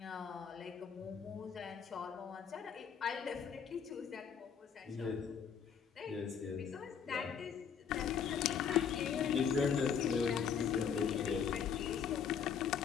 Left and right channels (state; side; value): quieter; right; 7.2 dB